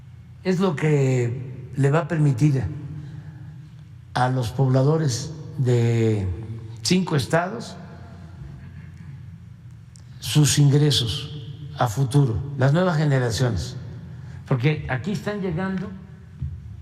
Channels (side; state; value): both; identical; correlation 1.00